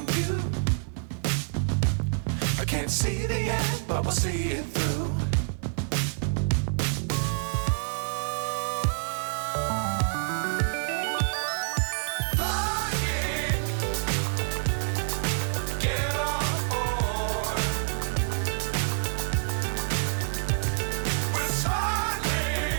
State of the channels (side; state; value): left; silent; 57 dB below the other